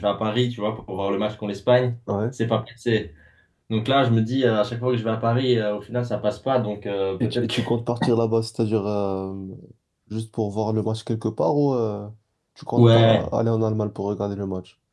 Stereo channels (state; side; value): identical; both; correlation 1.00